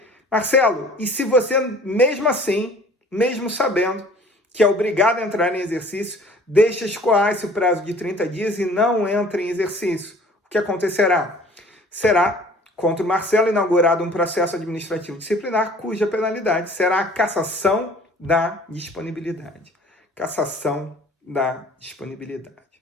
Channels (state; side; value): normal; both; correlation 0.50